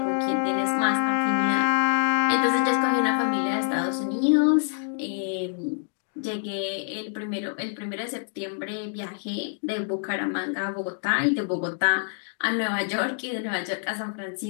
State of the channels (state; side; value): silent; right; digital silence